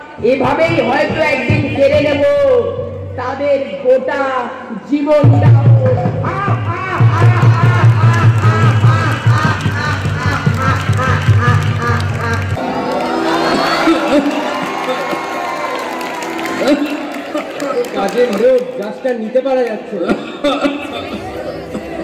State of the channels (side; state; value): both; identical; correlation 1.00